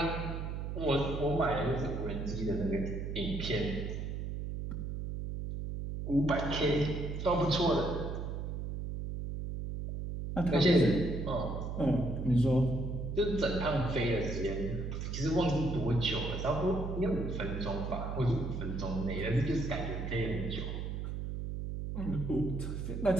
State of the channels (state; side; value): noise; right; hum, 4 dB below the sound